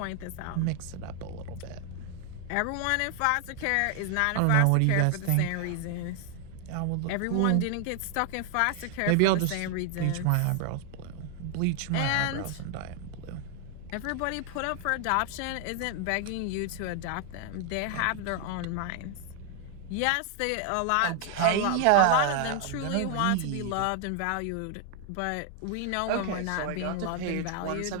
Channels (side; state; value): both; different; correlation 0.00